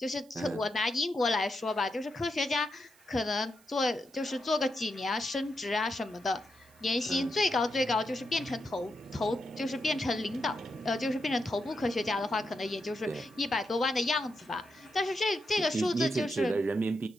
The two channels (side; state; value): right; noise; hiss, 28 dB below the sound